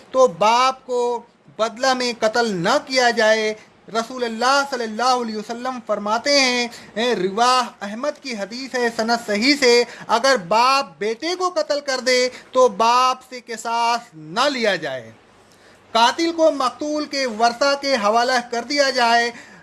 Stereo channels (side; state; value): both; identical; correlation 1.00